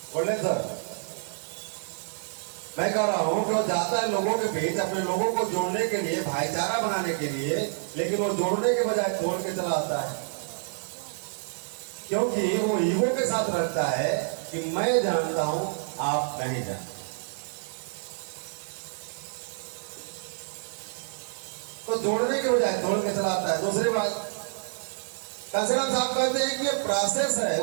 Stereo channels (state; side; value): silent; left; digital silence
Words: बोले सर, मैं कह रहा हूं कि वो जाता है लोगों के बीच अपने लोगों को जोड़ने के लिए, भाईचारा बनाने के लिए, लेकिन वो जोड़ने के बजाय तोड़ के चला आता है। क्योंकि वो ईगो के साथ रखता है कि मैं जानता हूं, आप नहीं जानते। तो जोड़ने के बजाय तोड़ के चला आता है। दूसरी बात, कांसीराम साहब कहते हैं कि ये प्रोसेस है,